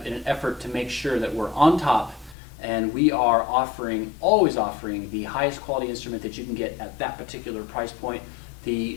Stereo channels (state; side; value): drops out; right; at 2.4 s